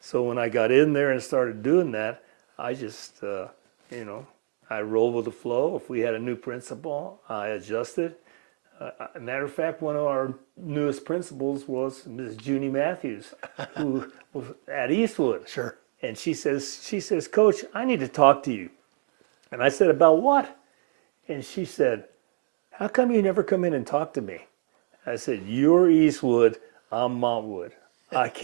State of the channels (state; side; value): silent; left; digital silence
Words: when I got in there and started doing that, I just, I rolled with the flow. If we had a new principal, I adjusted. Matter of fact, one of our newest principals was Ms. Junie Matthews, who was at Eastwood. Sure. And she says, "Coach, I need to talk to you." And I said, "About what?" And she said, "How come you never come in and talk to me?" I said, "You're Eastwood, I'm Montwood. I